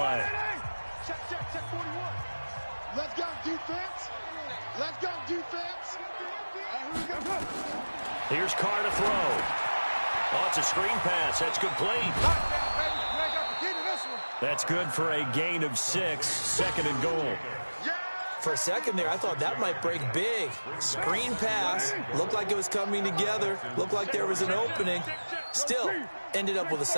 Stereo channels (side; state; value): both; inverted; correlation -1.00